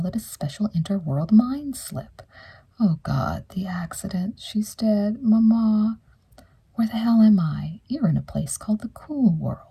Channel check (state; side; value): identical; both; correlation 1.00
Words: it a special interworld mind slip. Oh, God, the accident. She's dead. Mama. Where the hell am I? You're in a place called the cool